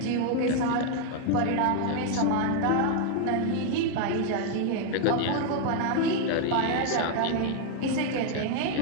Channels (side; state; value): both; different; correlation 0.00